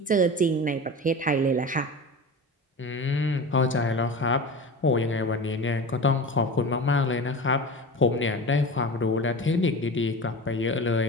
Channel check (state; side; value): normal; both; correlation 0.31